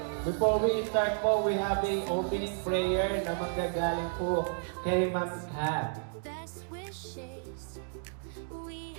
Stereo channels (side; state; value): left; silent; digital silence